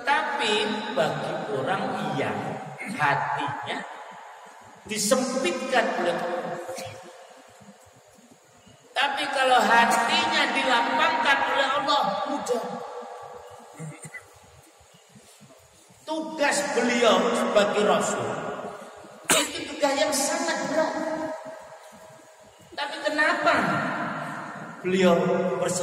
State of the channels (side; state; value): both; identical; correlation 1.00